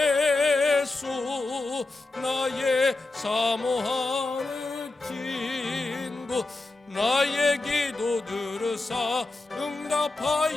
나의 사모하는 친구 나의 기도 들으사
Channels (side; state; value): right; quieter; 3.2 dB